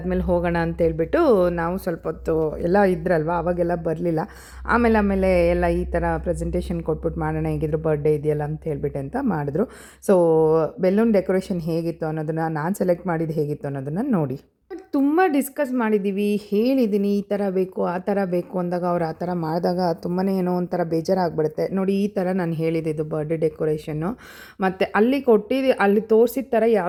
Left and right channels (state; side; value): identical; both; correlation 1.00